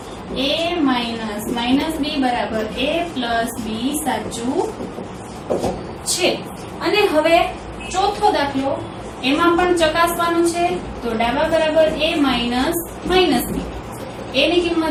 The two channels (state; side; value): identical; both; correlation 1.00